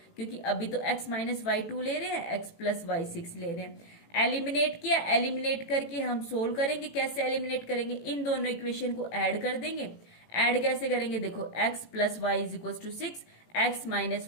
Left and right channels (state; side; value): late; right; 18 ms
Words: क्योंकि अभी तो x माइनस वाई 2 ले रहे हैं, x प्लस वाई 6 ले रहे हैं। एलिमिनेट किया, एलिमिनेट करके हम सोल्व करेंगे। कैसे एलिमिनेट करेंगे, इन दोनों इक्वेशन को ऐड कर देंगे। ऐड कैसे करेंगे, देखो x plus y is equal to 6, x minus